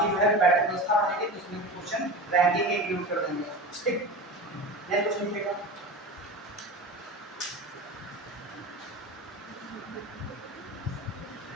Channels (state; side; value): normal; both; correlation 0.29